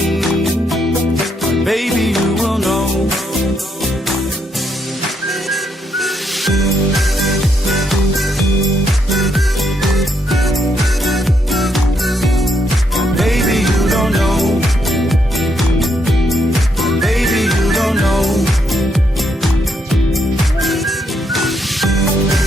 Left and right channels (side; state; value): both; normal; correlation 0.76